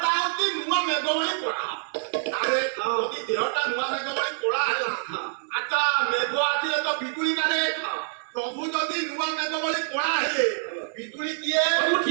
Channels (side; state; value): left; silent; 61 dB below the other